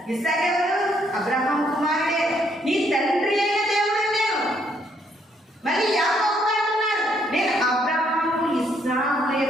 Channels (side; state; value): both; normal; correlation 0.70